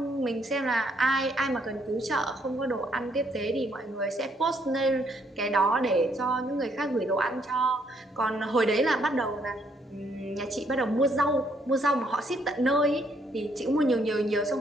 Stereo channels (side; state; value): both; normal; correlation 0.70